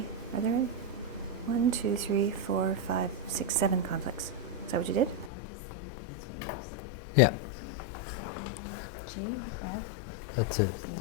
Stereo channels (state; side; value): drops out; right; at 5.3 s